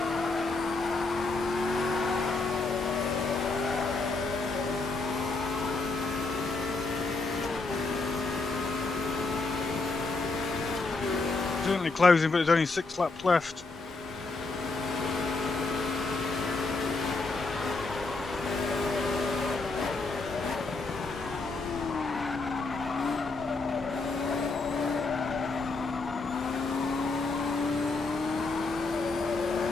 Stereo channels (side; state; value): right; quieter; 3.6 dB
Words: Certainly closing, but there's only 6 laps left.